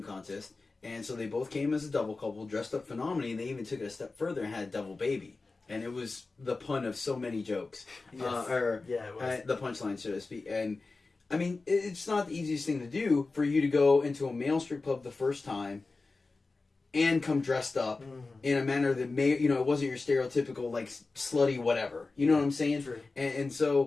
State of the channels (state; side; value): quieter; right; 3.7 dB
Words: contest. And so they both came as a double couple, dressed up phenomenally, and they even took it a step further and had a double baby. And it was the pun of so many jokes. Yes. It was. The punchline, so to speak. And I mean, it's not the easiest thing to do for you to go into a male strip club the first time and come dressed up in a manner that it wasn't your stereotypical, like, slutty whatever. You know what I'm saying? True. And